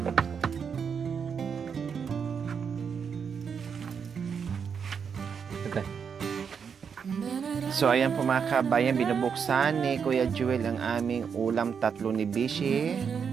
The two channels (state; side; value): quieter; left; 6.7 dB